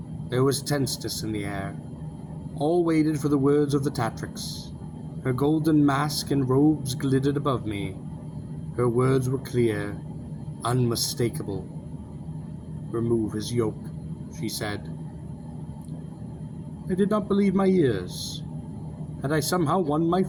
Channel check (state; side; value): identical; both; correlation 1.00